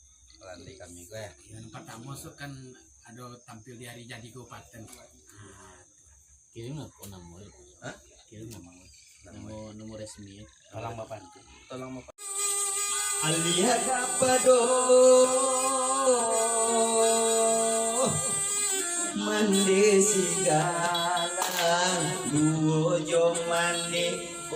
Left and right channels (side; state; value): both; identical; correlation 1.00